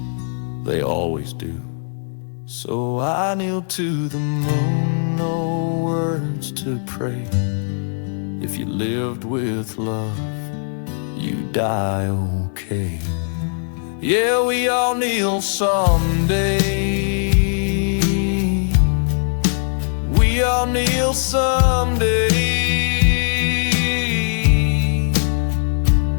they always do. So I kneel to the moon, no words to pray. If you lived with love, you die okay. Yeah, we all kneel someday. We all kneel someday.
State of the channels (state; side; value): silent; right; digital silence